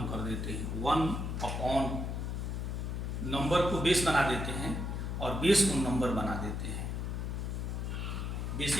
कर देते हैं 1 अपॉन नंबर को बेस बना देते हैं और बेस को नंबर बना देते हैं। बेस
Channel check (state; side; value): noise; left; hum, 2 dB below the sound